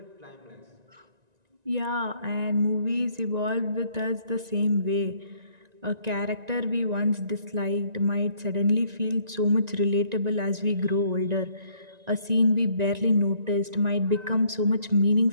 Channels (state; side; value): late; left; 1.9 ms